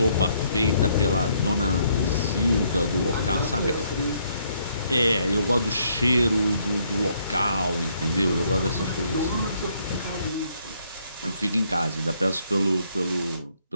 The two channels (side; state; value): both; inverted; correlation -0.70